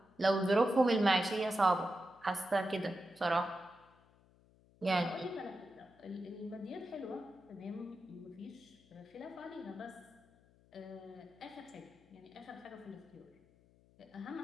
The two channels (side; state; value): left; noise; hum, 29 dB below the sound